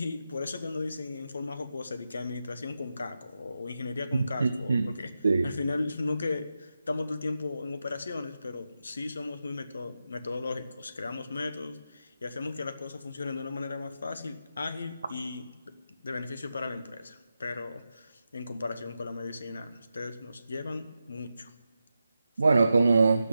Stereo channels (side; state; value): both; inverted; correlation -0.89